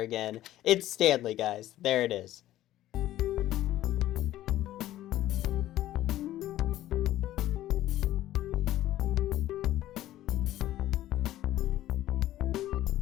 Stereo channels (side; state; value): right; quieter; 14.1 dB